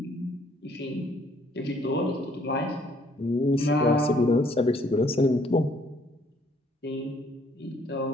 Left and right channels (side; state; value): both; normal; correlation 0.63